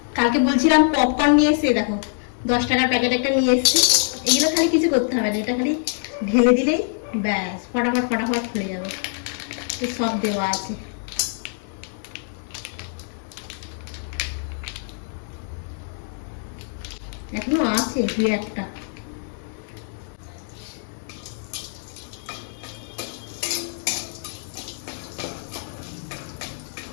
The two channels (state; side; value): silent; right; 62 dB below the other